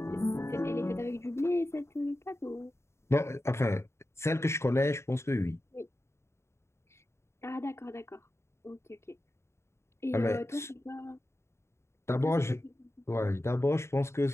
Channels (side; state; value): right; late; 0.13 ms